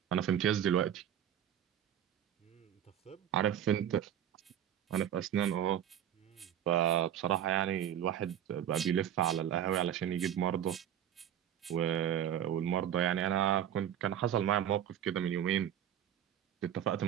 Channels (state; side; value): quieter; left; 10.1 dB